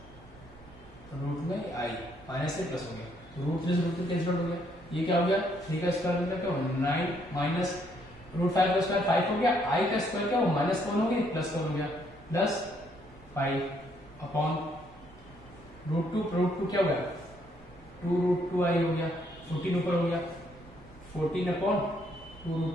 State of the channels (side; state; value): both; normal; correlation 0.70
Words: रूट में आई, माइनस से प्लस हो गया, √3 से √3 कैंसिल हो गया, ये क्या हो गया 3 का स्क्वायर मतलब क्या हो 9 माइनस √5 का स्क्वायर 5 हो गया, आई का स्क्वायर क्या हो माइनस कौन हो गया प्लस कौन हो गया प्लस 5 अपॉन √2 क्या हो गया 2√2i हो गया, 14 ऊपर हो गया 14 अपॉन